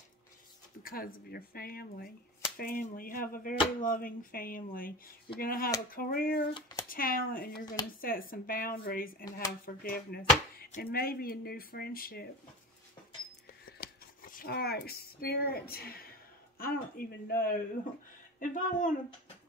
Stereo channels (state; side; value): normal; both; correlation 0.29